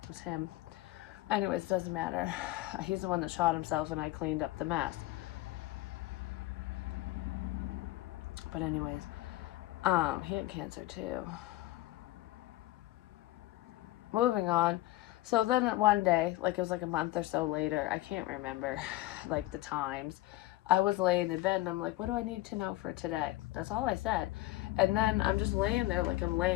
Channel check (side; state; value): right; quieter; 17.4 dB